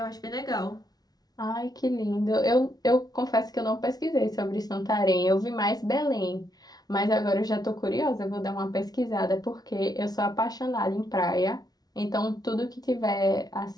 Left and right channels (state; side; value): late; right; 0.19 ms